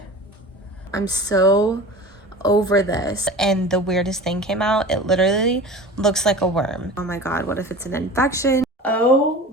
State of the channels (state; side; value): normal; both; correlation 0.36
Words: I'm so over this. And the weirdest thing came out. It literally looks like a worm. Oh my God, what if it's an infection? Oh